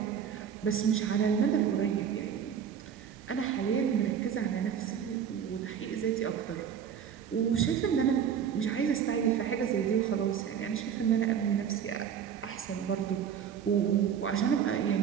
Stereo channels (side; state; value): left; quieter; 8.1 dB